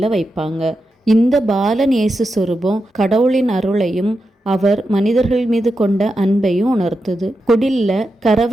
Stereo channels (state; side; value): normal; both; correlation 0.88